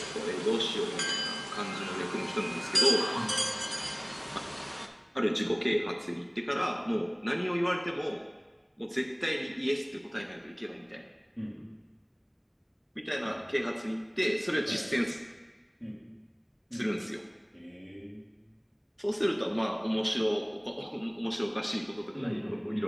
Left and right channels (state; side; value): identical; both; correlation 1.00